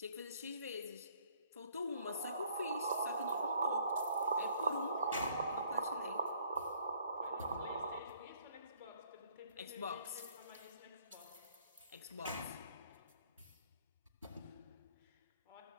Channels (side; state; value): both; inverted; correlation -0.62